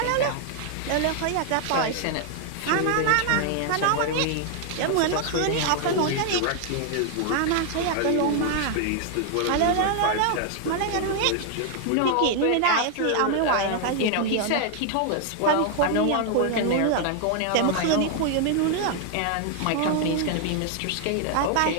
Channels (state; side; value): different; both; correlation 0.00